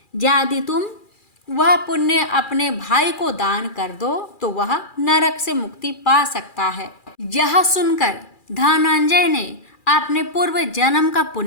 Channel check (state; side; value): late; right; 2.4 ms